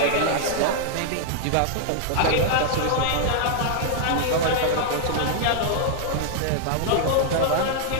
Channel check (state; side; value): different; both; correlation -0.01